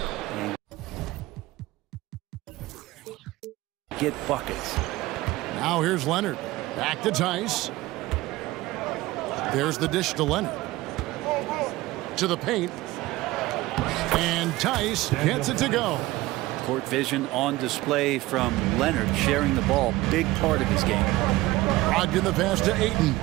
get buckets. Now here's Leonard. Back to Tice. There's the dish to Leonard. To the paint. And Tice gets it to go. Court vision on display from Leonard, sharing the ball, big part of his game. Brogdon the pass to Ayton.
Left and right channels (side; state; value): left; quieter; 18.4 dB